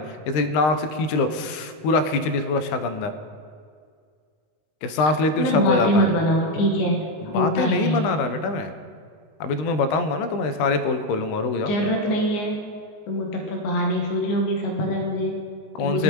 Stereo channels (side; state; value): right; late; 20 ms